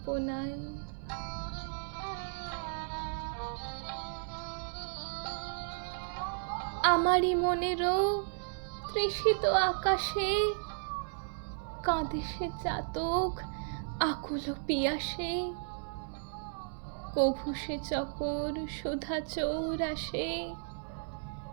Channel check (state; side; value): silent; left; digital silence